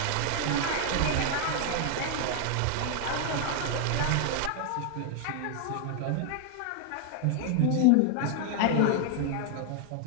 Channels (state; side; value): different; both; correlation 0.00